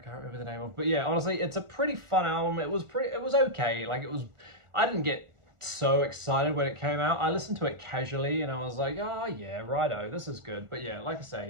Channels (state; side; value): late; left; 1.4 ms